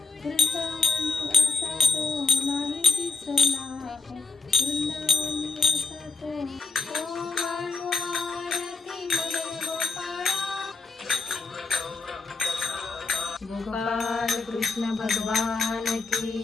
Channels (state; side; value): quieter; right; 3.8 dB